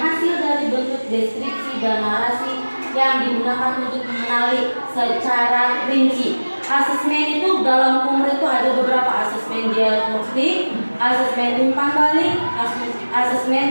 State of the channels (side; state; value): both; inverted; correlation -1.00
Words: dari bentuk deskripsi dan narasi yang digunakan untuk mengenali secara rinci. Asesmen itu dalam umur itu ada beberapa asesmen diagnostik, asesmen umpan balik,